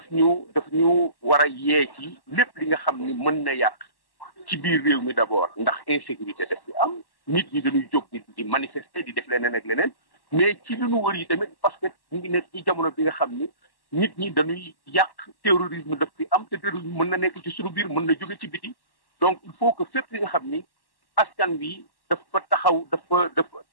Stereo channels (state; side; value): late; right; 1.1 ms